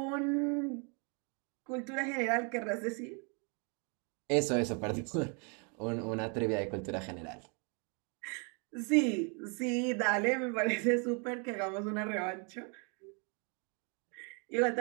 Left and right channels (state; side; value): quieter; left; 36.0 dB